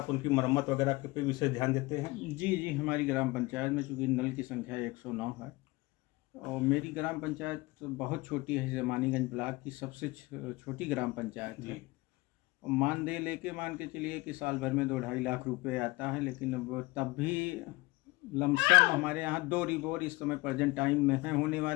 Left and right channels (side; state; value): right; quieter; 21.8 dB